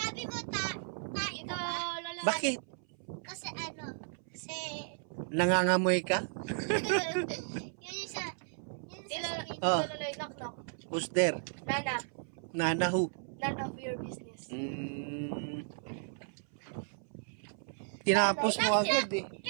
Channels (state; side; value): silent; left; 55 dB below the other